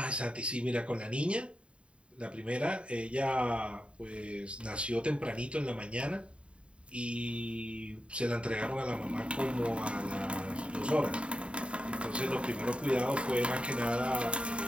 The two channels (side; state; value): left; late; 0.058 ms